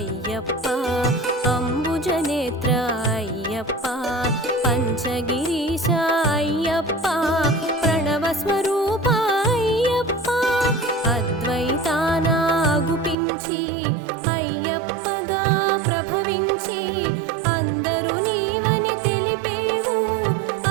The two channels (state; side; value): drops out; left; at 13.2 s